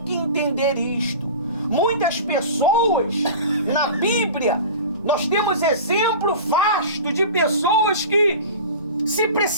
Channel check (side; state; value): both; inverted; correlation -0.35